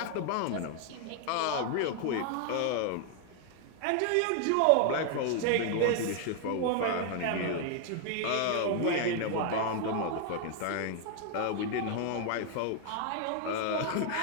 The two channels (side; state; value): both; different; correlation 0.00